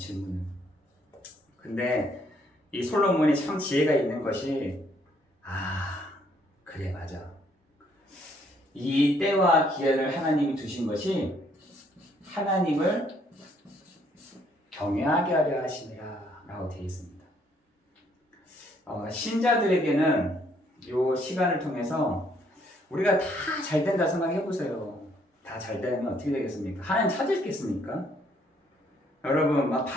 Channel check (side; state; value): both; normal; correlation 0.67